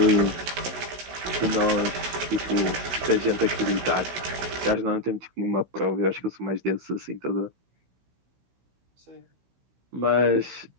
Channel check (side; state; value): left; late; 16 ms